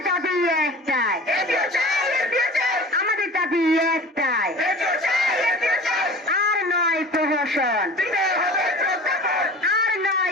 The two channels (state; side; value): normal; both; correlation 0.40